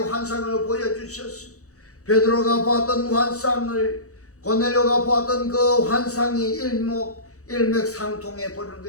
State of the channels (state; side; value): late; right; 0.65 ms